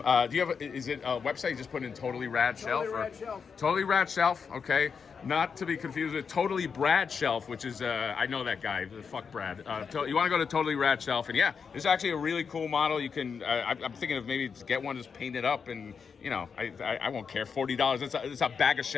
do you have, is it a website you just put in Totally Rad Shelf? Totally Rad Shelf. Totally Rad Shelf, okay. Not to be confused with Totally Brad Shelf, which is, I know that guy, fuck Brad. You want to go to Totally Rad Shelf, and yeah, it's actually a really cool model. You can, I'm thinking of maybe just get one, just paint it up, and I won't care, $40. It's a bag of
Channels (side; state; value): right; quieter; 6.0 dB